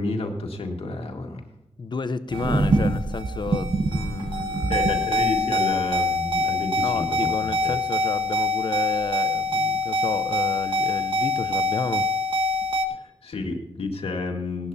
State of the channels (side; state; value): both; normal; correlation 0.61